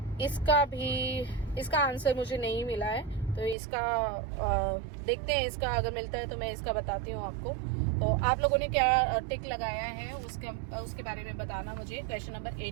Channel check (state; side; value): drops out; left; at 3.6 s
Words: इसका answer मुझे नहीं मिला है, तो इसका देखते हैं. इसका अगर मिलता है तो मैं इसका बताती हूँ आपको. तो आप लोगों ने क्या टिक लगाया है उसके बारे में बताना मुझे. Question number